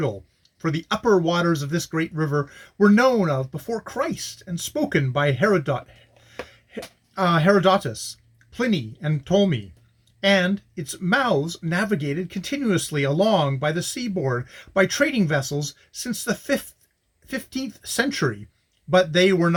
for the upper waters of this great river were known of before Christ and spoken by Herodotus, Pliny, and Ptolemy, and its mouths navigated continuously along by the seaboard by trading vessels since the 15th century, but they were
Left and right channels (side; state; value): both; identical; correlation 1.00